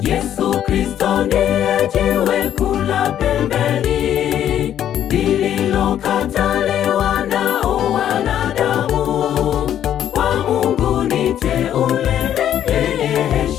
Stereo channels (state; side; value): quieter; right; 10.6 dB